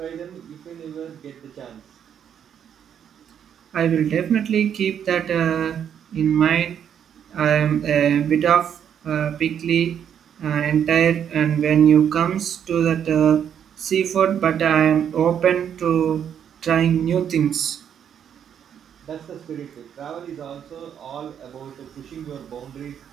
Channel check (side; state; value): left; quieter; 8.7 dB